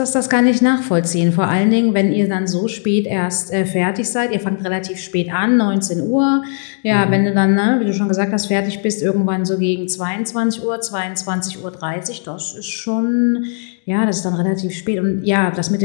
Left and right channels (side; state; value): right; silent; 57 dB below the other